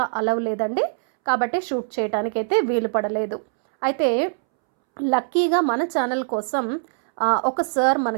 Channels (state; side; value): silent; left; 64 dB below the other